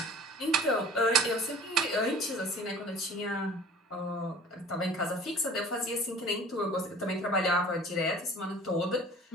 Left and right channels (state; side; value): normal; both; correlation 0.45